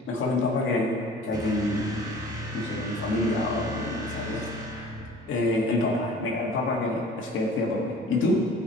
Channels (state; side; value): normal; both; correlation 0.46